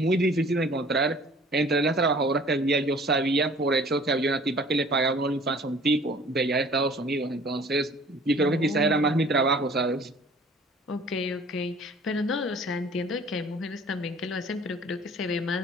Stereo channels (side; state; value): both; normal; correlation 0.51